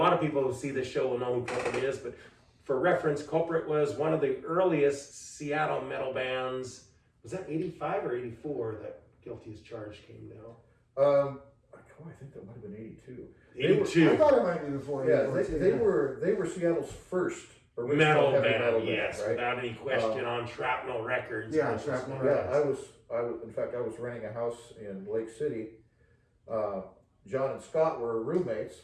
of people who see this show will know who Culprit is, but for reference, Culprit was one of the earliest Seattle metal bands. Was that 85 or 84 that Guilty as Charged came down? I think that might have been 82. 82. I thought it might be before. Yeah, they were Seattle's first original metal heavy metal band, band, yes, right? without any question, on Shrapnel Records. Yeah, Shrapnel Yeah, I was. In fact, I was renting a house in Lake City. John and Scott were roommates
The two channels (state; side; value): identical; both; correlation 1.00